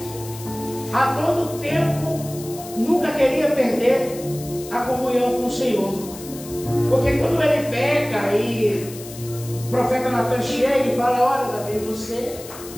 a todo tempo, nunca queria perder a comunhão com o Senhor. Porque quando ele peca e o profeta Natan chega e fala: olha, Davi, você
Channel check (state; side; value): noise; left; hiss, 15 dB below the sound